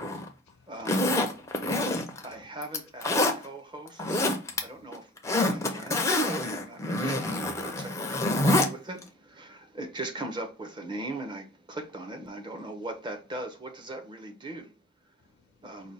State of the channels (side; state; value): both; normal; correlation 0.42